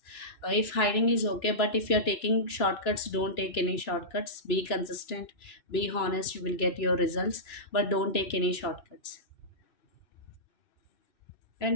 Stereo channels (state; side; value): late; right; 2.9 ms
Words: If hiding is okay, but if you're taking shortcuts, don't take any shortcuts. Be consistent, be honest, you will get your results, but don't take any shortcuts. And